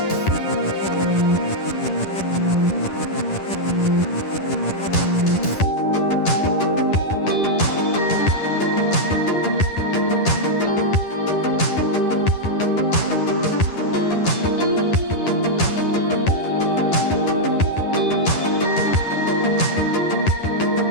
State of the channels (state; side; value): late; right; 10 ms